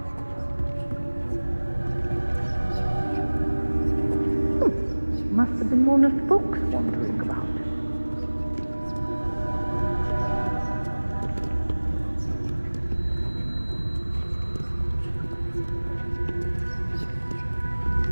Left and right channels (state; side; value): inverted; both; correlation -1.00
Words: Must have been one of the books wandering about.